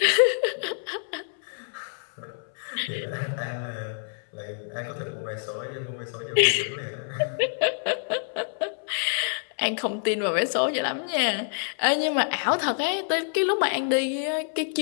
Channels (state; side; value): silent; right; 60 dB below the other